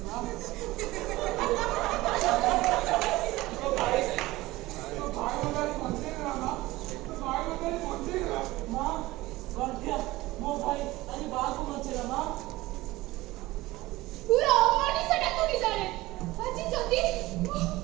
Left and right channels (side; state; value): left; quieter; 18.9 dB